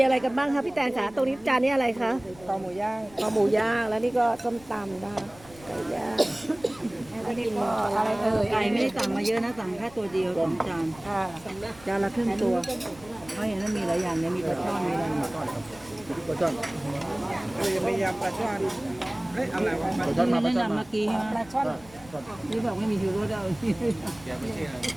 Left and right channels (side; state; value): left; noise; rumble, 22 dB below the sound